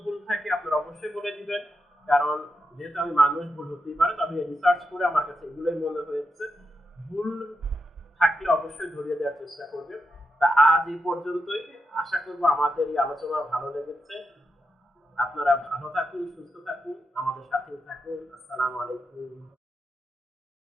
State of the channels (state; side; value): normal; both; correlation 0.87